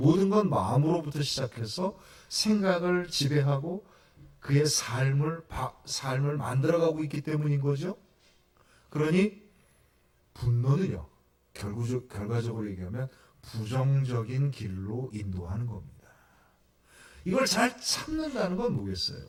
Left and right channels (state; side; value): identical; both; correlation 1.00